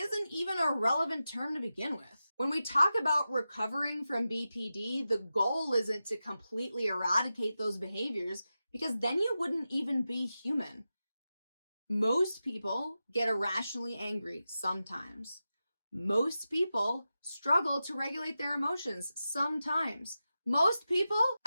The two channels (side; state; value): both; inverted; correlation -0.92